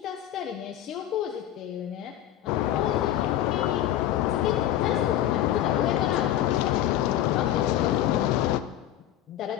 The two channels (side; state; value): right; quieter; 12.3 dB